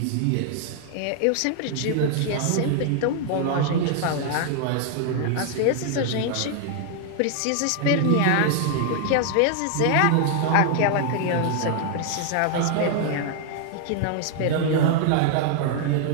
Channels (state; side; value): different; both; correlation 0.00